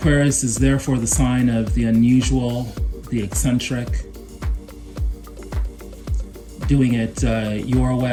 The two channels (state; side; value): identical; both; correlation 1.00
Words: is therefore the sign of the unusual, the eccentric, doing it your